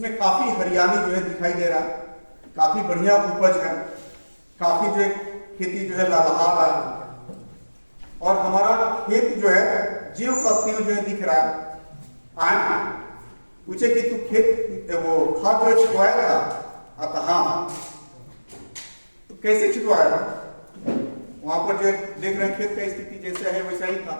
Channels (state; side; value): inverted; both; correlation -1.00